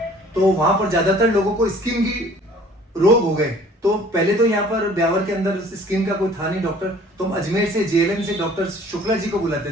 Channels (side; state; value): both; normal; correlation 0.53